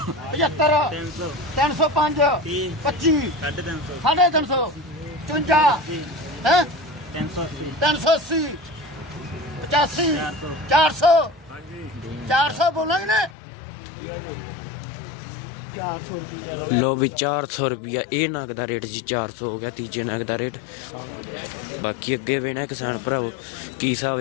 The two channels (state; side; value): drops out; right; at 13.4 s